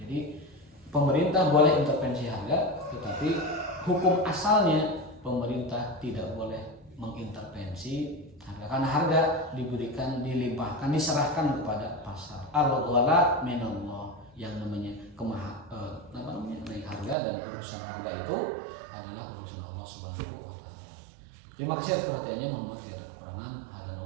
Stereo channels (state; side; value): drops out; left; at 17.2 s